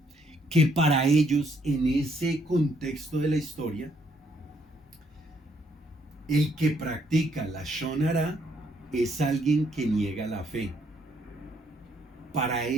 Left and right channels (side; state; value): both; normal; correlation 0.70